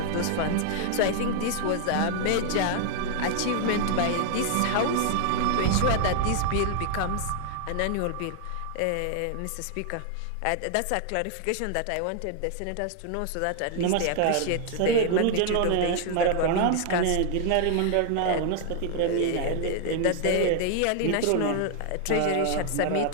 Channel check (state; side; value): different; both; correlation 0.00